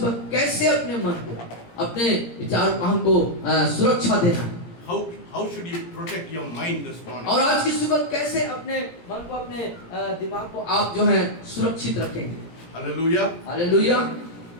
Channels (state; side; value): late; right; 17 ms